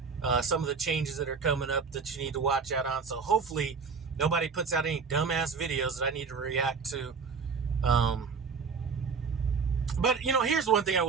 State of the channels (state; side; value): quieter; left; 5.4 dB